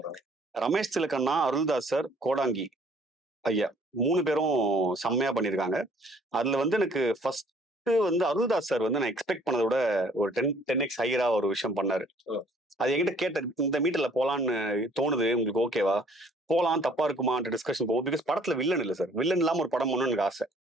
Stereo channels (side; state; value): both; normal; correlation 0.59